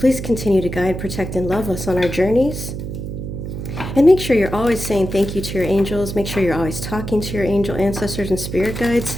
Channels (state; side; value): noise; right; hum, 7 dB below the sound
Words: continue to guide, protect, and love us on our journeys. And make sure you're always saying thank you to your angels. Make sure you're always talking to your angel, ancestors, and spirit guides.